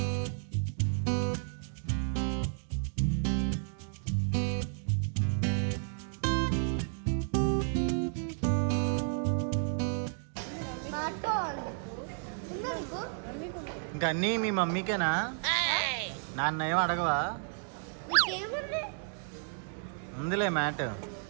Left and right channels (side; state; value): left; silent; 56 dB below the other